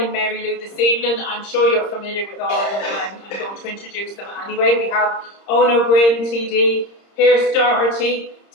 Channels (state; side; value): late; right; 30 ms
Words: Mary Lou this evening. I'm sure you're familiar with all of them, but I'm going to introduce them anyway. We have Owen O'Brien, TD, Pearse Doherty,